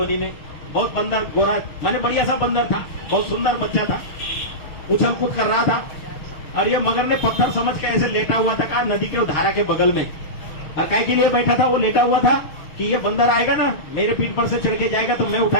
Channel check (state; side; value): late; right; 6.3 ms